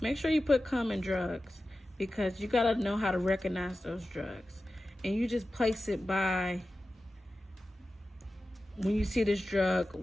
Make sure you put common drugs, because you gotta know how to recognize those drugs. And you just place it by, when you see this drug,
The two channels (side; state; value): both; normal; correlation 0.94